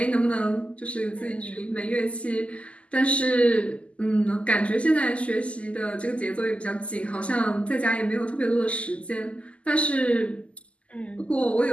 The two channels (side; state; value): right; late; 0.059 ms